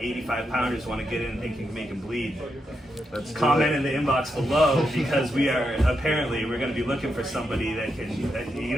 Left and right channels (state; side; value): normal; both; correlation 0.84